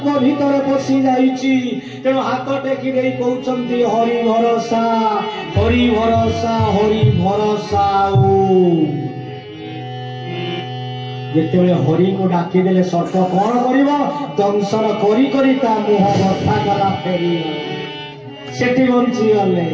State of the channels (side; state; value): both; identical; correlation 1.00